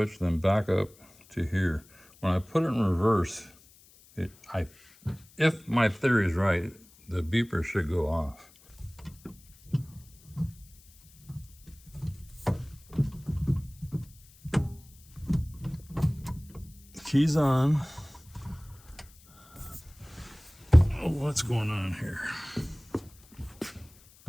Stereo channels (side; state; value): left; noise; hiss, 26 dB below the sound